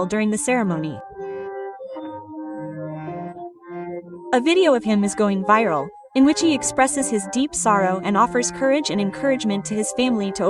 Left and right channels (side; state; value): both; identical; correlation 1.00